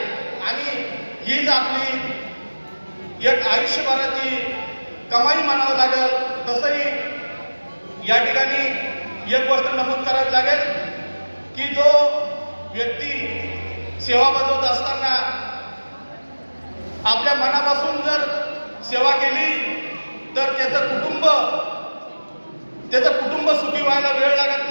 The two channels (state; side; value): inverted; both; correlation -1.00